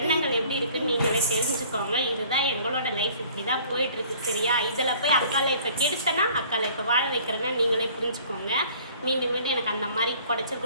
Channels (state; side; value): inverted; both; correlation -0.53